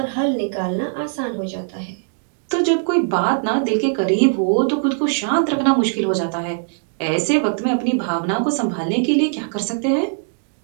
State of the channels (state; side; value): silent; left; digital silence